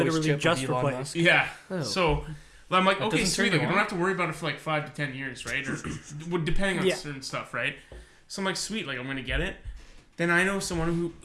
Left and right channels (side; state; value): both; identical; correlation 1.00